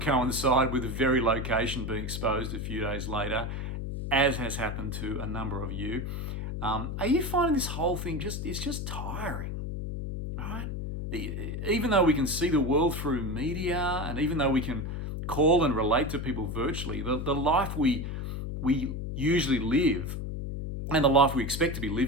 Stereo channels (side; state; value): left; noise; hum, 4 dB below the sound